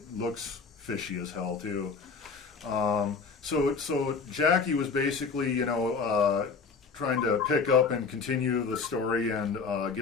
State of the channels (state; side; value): quieter; right; 5.0 dB